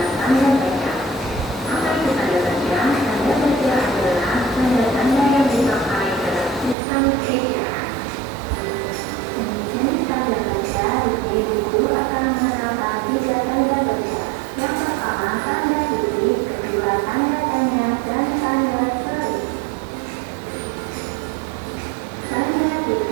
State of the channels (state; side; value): drops out; left; at 6.8 s